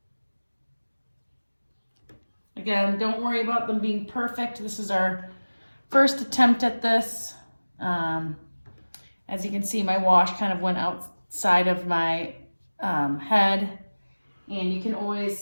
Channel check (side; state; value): both; inverted; correlation -1.00